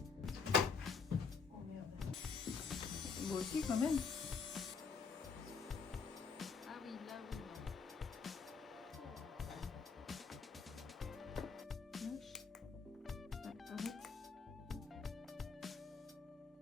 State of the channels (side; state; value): right; quieter; 5.2 dB